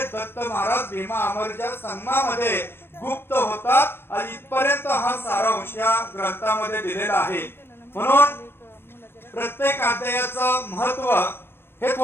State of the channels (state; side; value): late; right; 0.11 ms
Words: दत्त महाराज भीमा अमरच्या संगमामध्ये गुप्त होतात आणि इथपर्यंत हा सारांश या ग्रंथामध्ये दिलेला आहे। म्हणून प्रत्येक अध्यायाचं महत्व हे